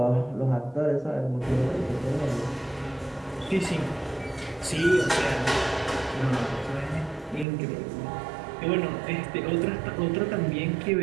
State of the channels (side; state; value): left; drops out; at 7.5 s